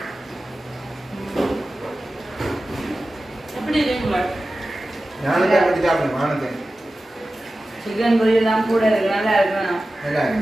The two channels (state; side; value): normal; both; correlation 0.95